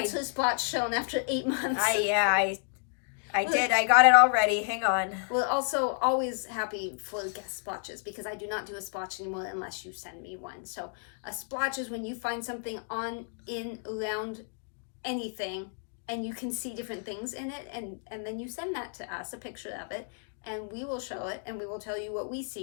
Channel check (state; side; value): silent; right; 57 dB below the other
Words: her splotch shown after 8 months. I did. I got it already. Hang on. We're also always happy for guest splotches because I do not do a splotch anymore unless you send me one. So a splotch is when you find something on, in, around anything and you can see different things in it and then you send that to us, a picture of it, and we will show it and we will tell you what we